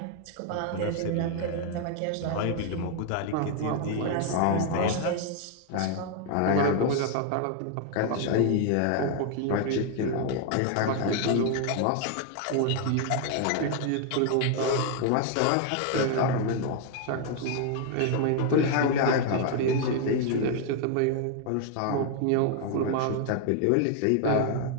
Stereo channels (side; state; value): both; different; correlation 0.00